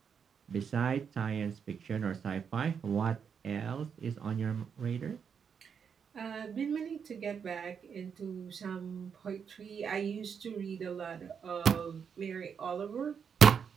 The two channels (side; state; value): left; quieter; 6.9 dB